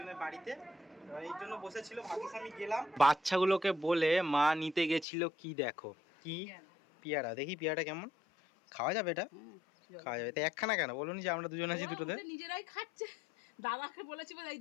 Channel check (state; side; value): drops out; right; at 5.1 s